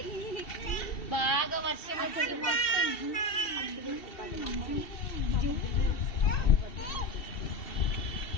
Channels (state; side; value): late; right; 2.7 ms